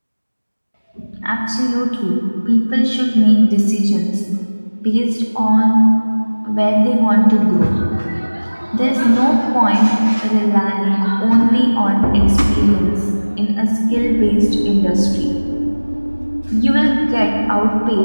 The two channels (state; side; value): inverted; both; correlation -1.00